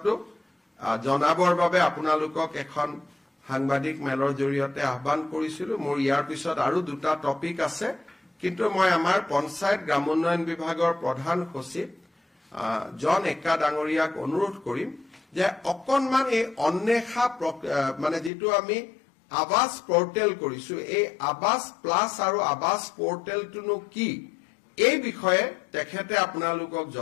জনাবৰ বাবে আপোনালোকক এখন সাংবাদিক মেলৰ জৰিয়তে আহ্বান কৰিছিলো মোৰ ইয়াৰ পিছত আৰু দুটা টপিক আছে কিন্তু মই আমাৰ পঞ্চায়ত গ্ৰামোন্নয়ন বিভাগৰ প্ৰধান সচিব জন একা ডাঙৰীয়াক অনুৰোধ কৰিম যে অকনমান এই অন্বেষা মানে যেটো আমি আৱাস পোৰ্টেল কৰিছো এই আৱাস প্লাস আৰু আৱাস পোৰ্টেলটো কি এই বিষয়ে তেখেতে আপোনালোকক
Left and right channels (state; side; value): drops out; right; at 18.3 s